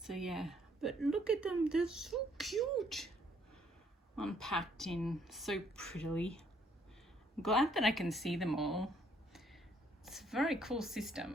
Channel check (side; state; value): both; normal; correlation 0.67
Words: So yeah, but look at them, they're so cute. Unpacked in so prettily. I'm glad that I can see them all. It's a very cool